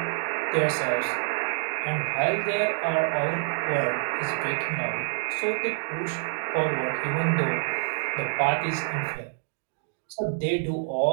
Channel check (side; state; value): left; silent; digital silence